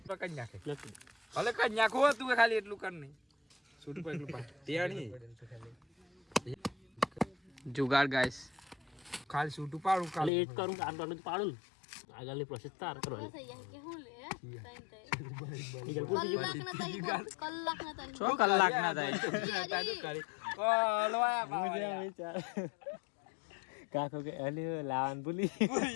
ભલે કઈ નાખો તું ખાલી એટલું કર નહીં. જુગાડ ગાઈસ ખાલી છૂટું પાડું ખાલી એક કરું આટલું પાડું ને આગળની પ્રોસેસ તાર કરવાની. કે હું લે કલાક ના થાય. કાકો કે અલી લાવન ભૂલી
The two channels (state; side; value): drops out; right; at 10.3 s